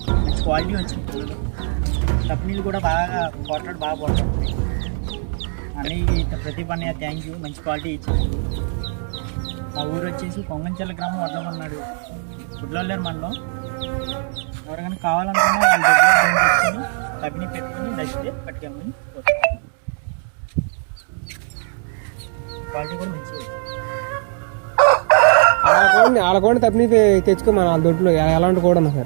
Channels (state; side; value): silent; left; 57 dB below the other